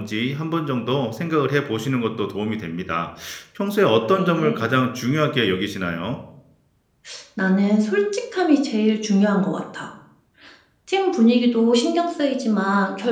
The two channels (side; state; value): both; identical; correlation 1.00